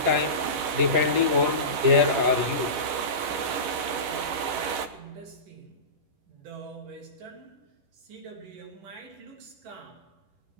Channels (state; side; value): late; left; 10 ms